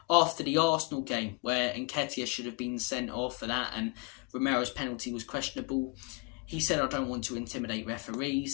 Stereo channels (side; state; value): right; quieter; 29.3 dB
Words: after the Arsenal game where Nketiah should have been sent off for that and Romero's penalty was questionable. He said, I don't want to intimidate